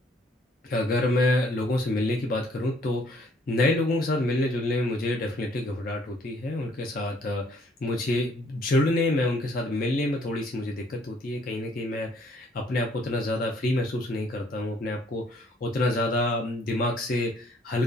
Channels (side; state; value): both; normal; correlation 0.63